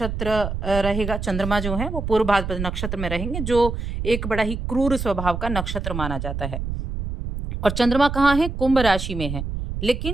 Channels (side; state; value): right; noise; rumble, 5 dB below the sound